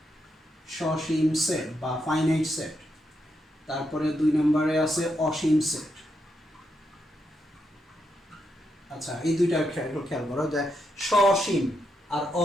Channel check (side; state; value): both; normal; correlation 0.82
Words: সসীম সেট বা ফাইনাইট সেট। তারপরে 2 নম্বরে আছে অসীম সেট। আচ্ছা, এই দুইটা খেয়াল করো যে সসীম আর